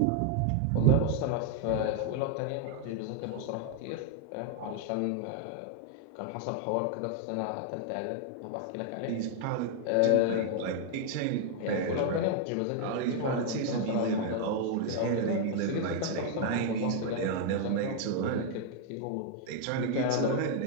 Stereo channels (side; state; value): both; different; correlation 0.00